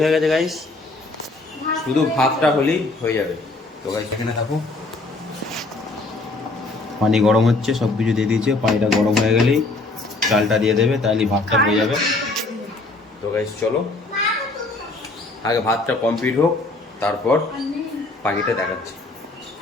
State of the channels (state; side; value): quieter; right; 3.2 dB